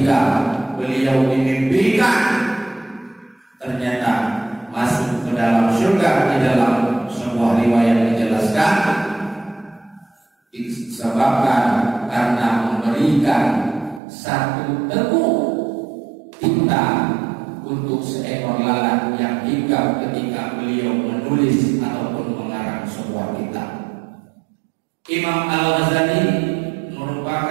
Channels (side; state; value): left; drops out; at 14.0 s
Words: beliau dimimpikan ternyata masuk ke dalam surga, di dalam sebuah riwayat menjelaskan disebabkan karena memberikan satu teguk tinta untuk seekor lalat yang hinggap ketika beliau menulis ataupun mengarang sebuah kitab. Imam Al-Ghazali